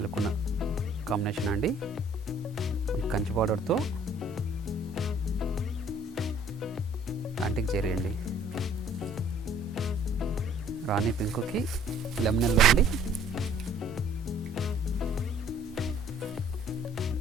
లుక్ ఉన్న కాంబినేషన్ అండి. కంచి బార్డర్తో యాంటిక్ జరీ అండి. రాణి పింక్కి లెమన్ ఎల్లో అండి.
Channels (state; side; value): normal; both; correlation 0.57